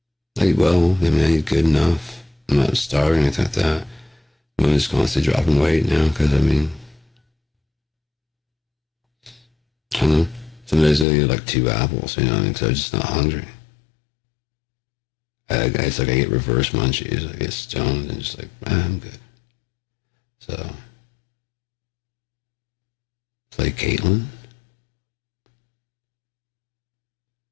eat well. I mean, I eat good enough. I'm not starving or anything like that. I'm just constantly dropping weight now because, I mean, I don't know. Some days I eat like 2 apples, you know what I mean? Because I'm just not hungry. It's like I get reverse munchies. I get stoned and just like, I'm good. So, play Caitlin?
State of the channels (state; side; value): drops out; right; at 11.1 s